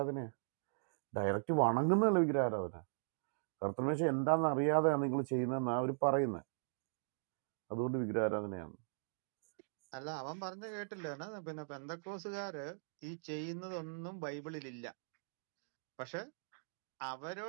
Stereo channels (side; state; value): left; silent; digital silence